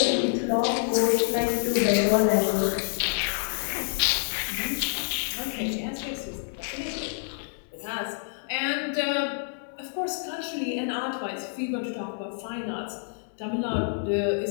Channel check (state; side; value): silent; right; 60 dB below the other